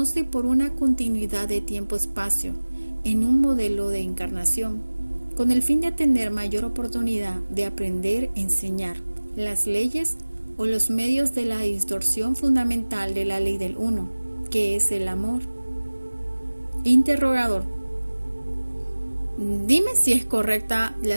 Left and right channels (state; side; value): inverted; both; correlation -1.00